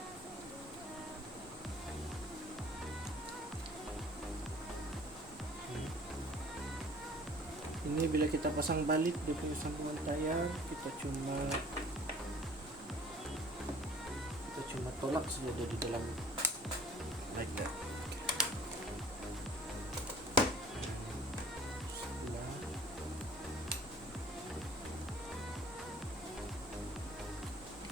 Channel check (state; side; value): normal; both; correlation 0.50